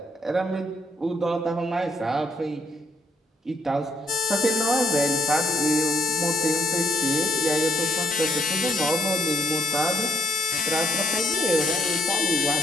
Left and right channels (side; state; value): both; normal; correlation 0.69